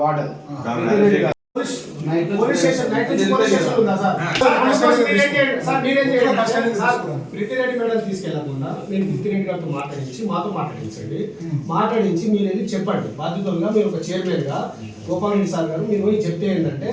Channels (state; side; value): identical; both; correlation 1.00